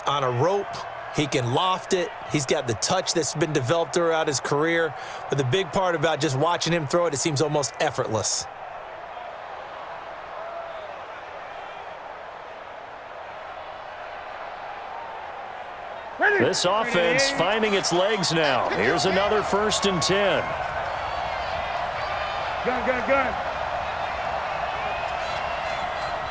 on a rope. He can loft it. He's got the touch that's been developed throughout his career. But the big part about just watching him throw it, it seems almost effortless. This offense finding its legs now. Here's another 1st and 10. Gun.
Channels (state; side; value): identical; both; correlation 1.00